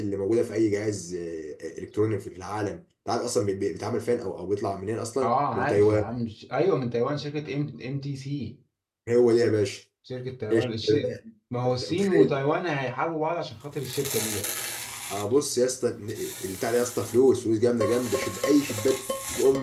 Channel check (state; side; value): identical; both; correlation 1.00